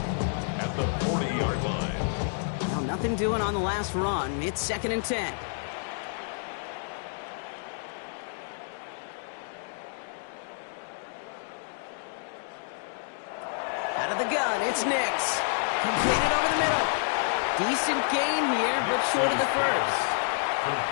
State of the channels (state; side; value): silent; right; digital silence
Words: at the 40-yard line. Well, nothing doing on the last run. It's second and 10. Out of the gun, it's Nix. Completed over the middle. Decent gain here, but short of the first.